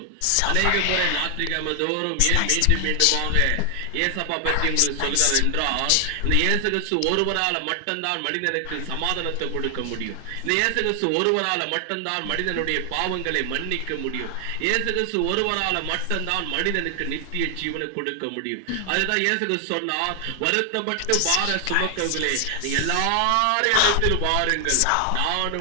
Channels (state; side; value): different; both; correlation 0.00